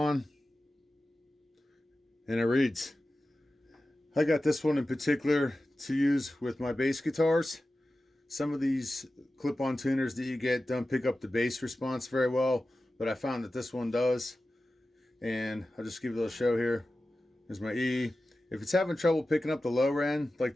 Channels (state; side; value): normal; both; correlation 0.94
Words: and it reads. I got this one in particular to use with my bass guitars. Some of these clip-on tuners that you get don't pick up the bass response very well, but I found that this one does. And I'll just give you a little show here. There's my E. If it's having trouble picking up the lower end, like